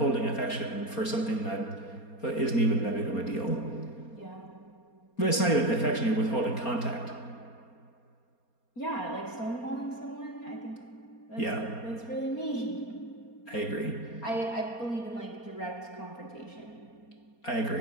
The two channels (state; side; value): late; right; 4.3 ms